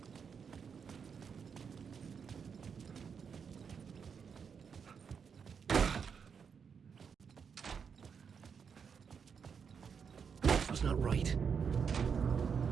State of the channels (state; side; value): quieter; left; 6.5 dB